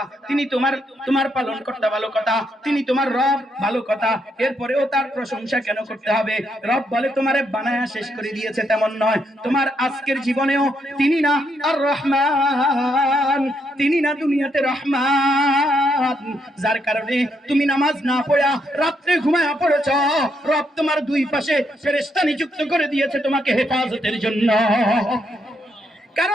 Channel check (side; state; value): both; normal; correlation 0.77